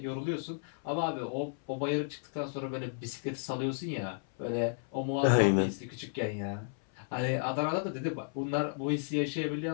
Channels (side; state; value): right; silent; 56 dB below the other